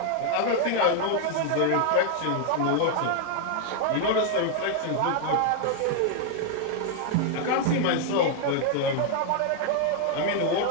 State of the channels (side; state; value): both; different; correlation 0.00